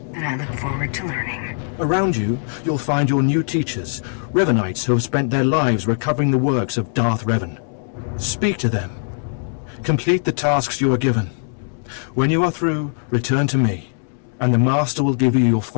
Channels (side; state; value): right; silent; digital silence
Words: And I look forward to learning. Around you, you'll find your new teachers, Revanites who have spent their lives recovering the works of Darth Revan. Speak to them. Complete the tasks you are given. When you are through, return to me, and the Master will give you your